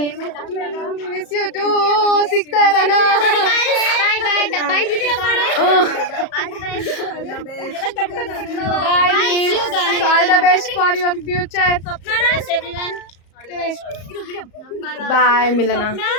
Miss you too. ಸಿಗ್ತಾ ಇರೋಣ. ಬಾಯ್ ಬಾಯ್ ಬಾಯ್ ವಿಡಿಯೋ ಮಾಡು. All the best for your future. Everyone. Bye Milana.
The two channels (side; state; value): right; late; 34 ms